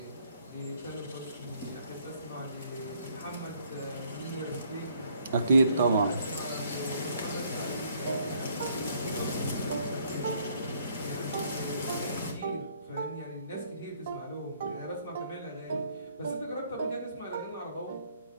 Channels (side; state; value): both; inverted; correlation -0.65